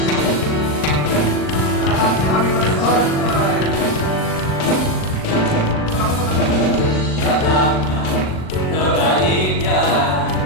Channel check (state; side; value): late; right; 39 ms